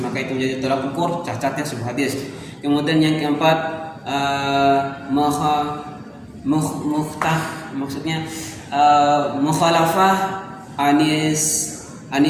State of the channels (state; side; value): identical; both; correlation 1.00